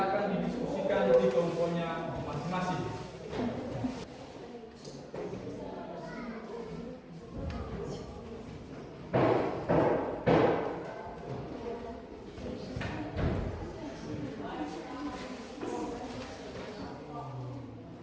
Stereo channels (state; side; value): identical; both; correlation 1.00